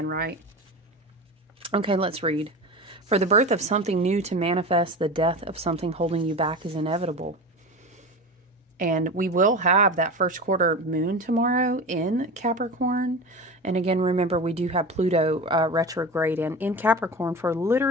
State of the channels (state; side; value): normal; both; correlation 0.29